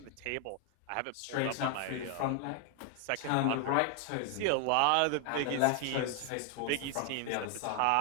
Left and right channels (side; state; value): both; different; correlation 0.00